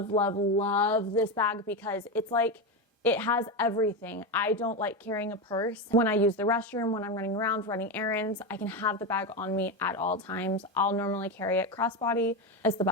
love, love this bag because it's like, it has everything. I don't like carrying a purse. When I use the restroom, when I'm running around, running errands, I can have the bag on me at all times. I'll normally carry it crossbody. It's the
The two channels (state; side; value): normal; both; correlation 0.14